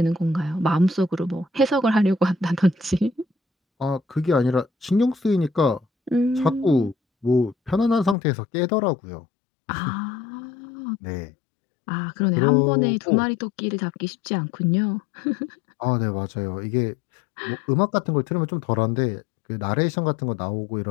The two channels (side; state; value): right; drops out; at 8.2 s